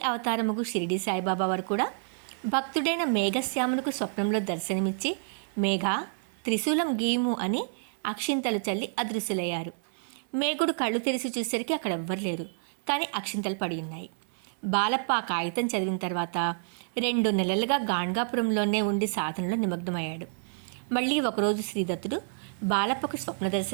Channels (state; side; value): silent; left; 59 dB below the other